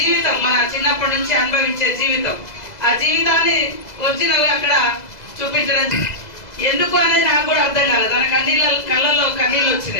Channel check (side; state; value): right; late; 2.0 ms